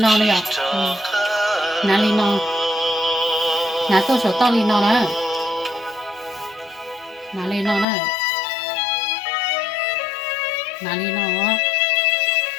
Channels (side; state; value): right; drops out; at 7.9 s